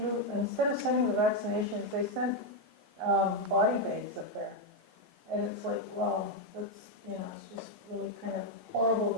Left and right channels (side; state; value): both; normal; correlation 0.03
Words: vaccinations, they sent body bags up there. And it's like, well, that's, it's just really kind of horrible